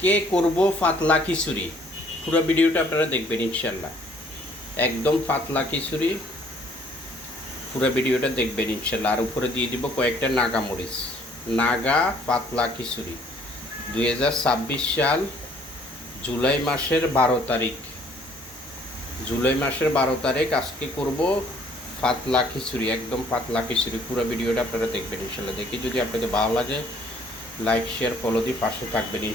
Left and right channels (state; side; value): normal; both; correlation 0.60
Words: করব পাতলা খিচুড়ি। পুরো ভিডিওটা আপনারা দেখবেন ইনশাল্লাহ। একদম পাতলা খিচুড়ি, পুরো ভিডিওটা দেখবেন ইনশাল্লাহ। আর উপরে দিয়ে দিব কয়েকটা নাগা মরিচ। নাগা পাতলা খিচুড়ি 2026 সাল জুলাই মাসের 12 তারিখ। জুলাই মাসের 12 তারিখ আজকে করব পাতলা খিচুড়ি, একদম পাতলা খিচুড়ি। পুরো ভিডিওটা আপনারা দেখবেন ইনশাল্লাহ। দেখি যদি আপনাদের ভালো লাগে লাইক শেয়ার ফলো দিয়ে পাশে থাকবেন